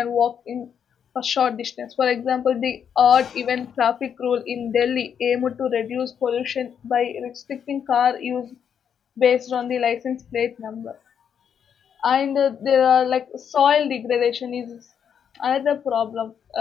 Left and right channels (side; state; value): right; quieter; 7.9 dB